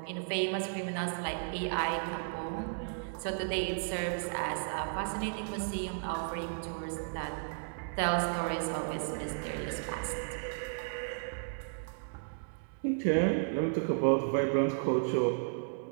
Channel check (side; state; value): left; silent; digital silence